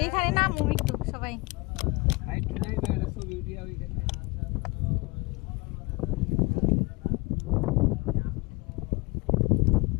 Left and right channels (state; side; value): quieter; right; 25.4 dB